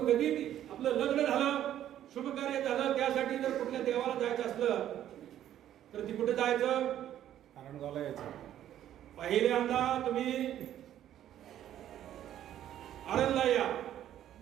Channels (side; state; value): left; quieter; 11.5 dB